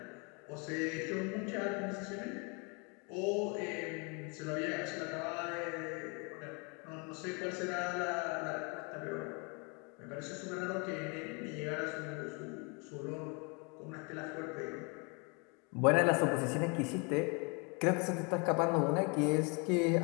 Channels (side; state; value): right; quieter; 32.5 dB